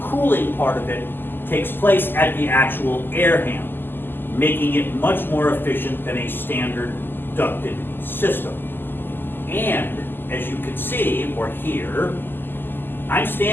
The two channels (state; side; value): late; right; 0.096 ms